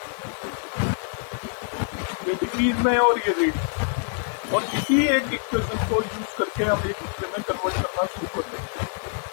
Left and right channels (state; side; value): silent; right; 61 dB below the other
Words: ये डिग्रीज में है और ये रेडियंस में है, और इसी एक इक्वेशन को यूज करके हम एक दूसरे में कन्वर्ट करना शुरू कर देंगे।